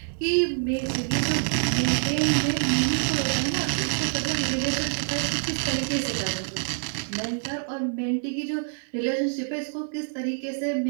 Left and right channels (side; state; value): left; silent; digital silence